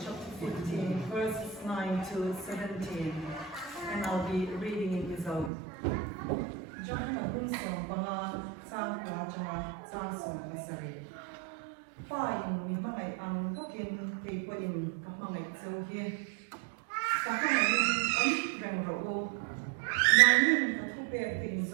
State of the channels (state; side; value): drops out; left; at 5.5 s